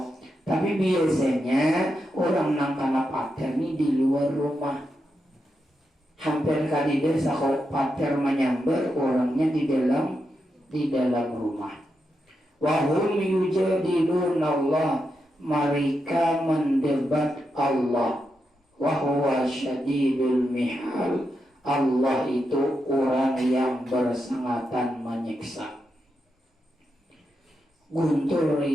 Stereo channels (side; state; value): both; normal; correlation 0.85